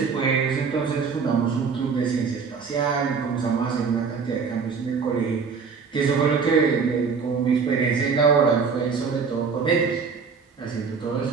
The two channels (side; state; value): left; quieter; 5.5 dB